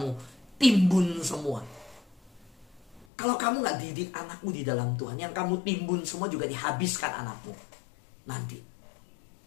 timbun semua? Kalau kamu gak didik anakmu di dalam Tuhan, yang kamu timbun semua juga dihabiskan anakmu nanti.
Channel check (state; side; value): drops out; right; at 3.1 s